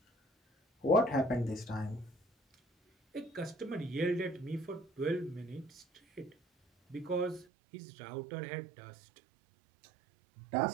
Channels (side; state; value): left; drops out; at 7.5 s